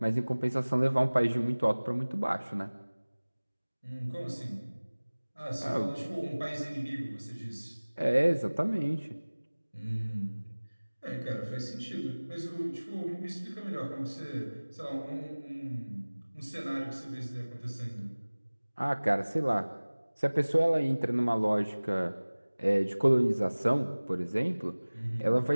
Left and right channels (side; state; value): both; inverted; correlation -1.00